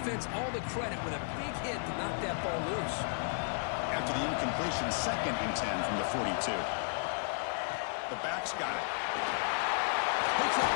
all the credit with a big hit to knock that ball loose. After the incompletion, 2nd and 10 from the 42. The back's got it. Picks out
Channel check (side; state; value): right; silent; 55 dB below the other